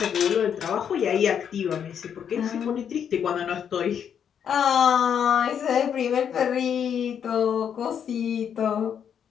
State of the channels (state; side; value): quieter; right; 8.2 dB